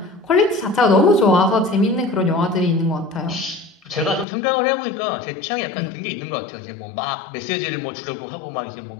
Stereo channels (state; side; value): drops out; right; at 4.2 s